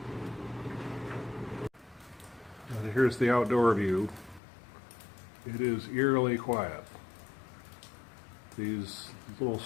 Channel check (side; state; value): right; drops out; at 4.4 s